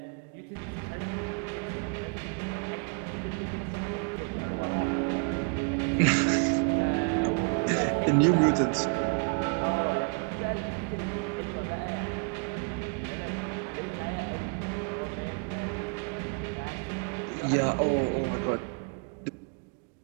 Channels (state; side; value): quieter; left; 37.8 dB